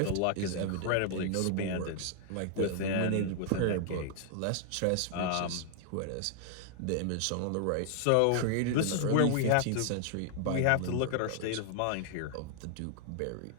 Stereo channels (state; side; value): different; both; correlation 0.00